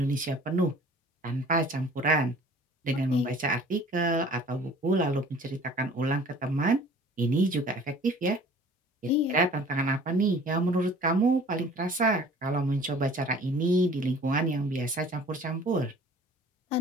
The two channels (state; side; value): normal; both; correlation 0.49